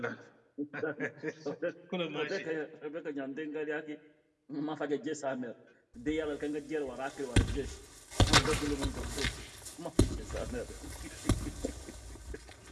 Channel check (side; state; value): both; identical; correlation 1.00